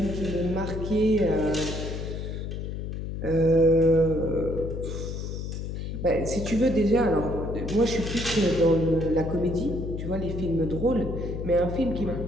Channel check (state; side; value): noise; left; hum, 5 dB below the sound